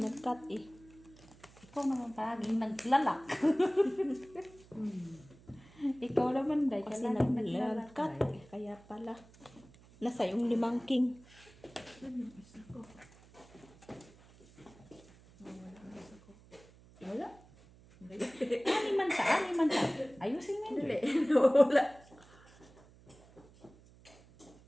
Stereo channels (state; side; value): noise; right; hum, 24 dB below the sound